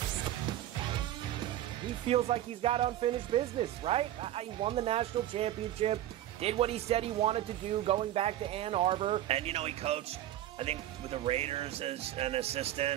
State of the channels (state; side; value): quieter; left; 12.9 dB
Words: He feels like he's got unfinished business, right? He won the national championship, did what he said he wanted to do going back to Ann Arbor. And, he coached, I think, with the Raiders as an